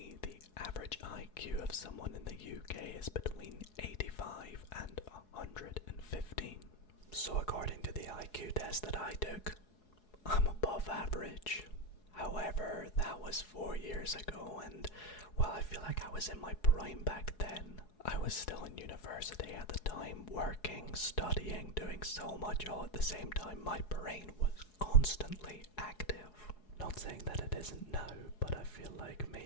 the average IQ of someone in the UK is between 85 and 115. So according to the IQ test that I took, I'm above average. However, that was 4 years ago, and while I feel like I was in my prime back then, I was still in university at the time, working, studying, doing so much all at the same time. My brain was constantly active. Not saying that it isn't now, but I feel like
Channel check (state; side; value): late; right; 4.7 ms